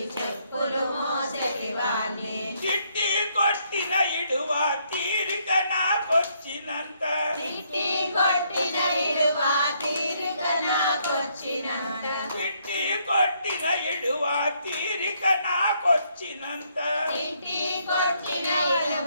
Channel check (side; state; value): both; inverted; correlation -0.71